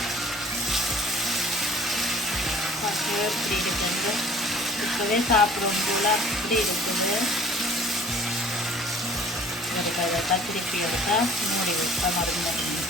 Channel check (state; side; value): normal; both; correlation 0.51